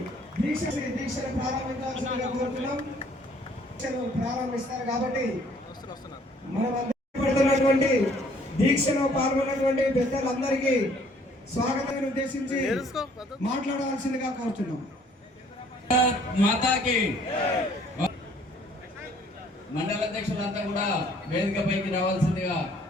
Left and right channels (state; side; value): normal; both; correlation 0.60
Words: దీక్షను ప్రారంభించాల్సిందిగా కోరుతున్నాం. ప్రారంభిస్తారు కాబట్టి మనం పడుతున్నటువంటి దీక్షలో పాల్గొన్నటువంటి పెద్దలందరికీ స్వాగతాన్ని ఉద్దేశించి మాట్లాడవలసిందిగా కోరుతున్నాం. మాతాకి మండల అధ్యక్షులంతా కూడా వేదికపైకి రావాల్సిందిగా